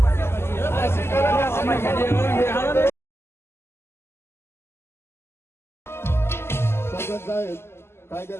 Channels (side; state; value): right; late; 0.12 ms